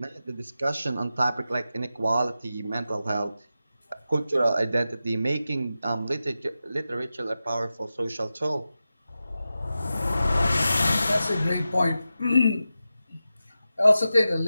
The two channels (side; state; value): both; inverted; correlation -0.92